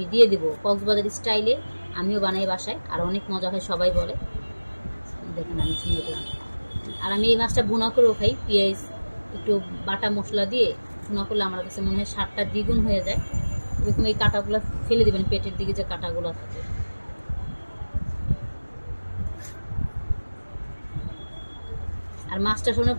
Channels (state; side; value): inverted; both; correlation -1.00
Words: দিয়ে দেবো। কক্সবাজার স্টাইলে আমিও বানাই বাসায়, আর অনেক মজা হয়, সবাই বলে। দেখেন আমি সুন্দর করে, আর আমি এই মাছটা ভুনা করেও খাই, পেঁয়াজ একটু বাটা মশলা দিয়ে ভুনা করলে আমার কাছে মনে হয় স্বাদটা দ্বিগুণ হয়ে যায়। এরকম এই কাঁটাগুলো ফেলে দিবেন, পেটের দিকে যে কাঁটাগুলো থাকে। আর মাছটা শুনে